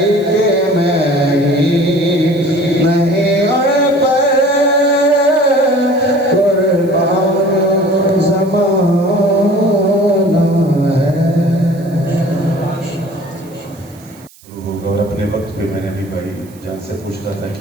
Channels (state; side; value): noise; right; hiss, 26 dB below the sound